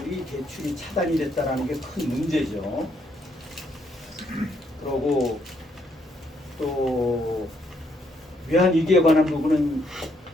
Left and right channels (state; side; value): normal; both; correlation 0.73